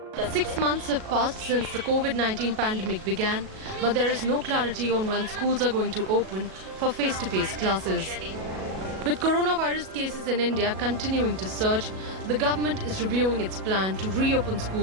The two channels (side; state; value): left; late; 37 ms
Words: 6 months have passed since the COVID-19 pandemic began, but there is no clarity on when schools are going to open for face-to-face classes. With coronavirus cases in India continuing to surge, the government is reviewing its plan to reopen